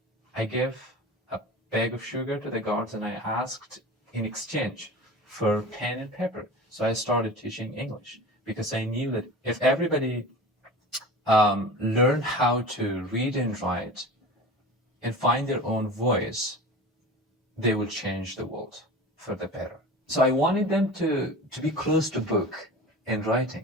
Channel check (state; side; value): normal; both; correlation 0.35